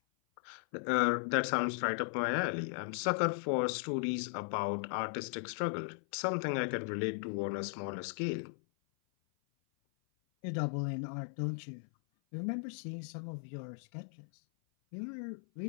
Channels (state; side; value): silent; right; 53 dB below the other